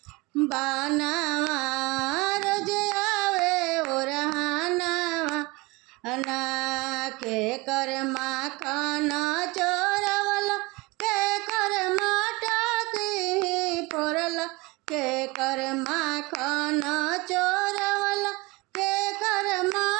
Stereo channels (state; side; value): quieter; left; 24.3 dB